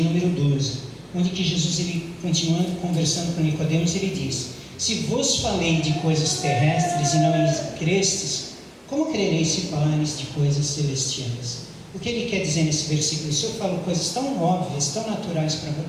número 12, onde que Jesus, ele, continuando conversando com Nicodemos, ele diz: se vos falei de coisas terrestres e não crestes, como crereis se falarem de coisas celestiais? O que ele quer dizer nesse versículo? Se eu falo coisas tão óbvias, tão naturais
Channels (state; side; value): identical; both; correlation 1.00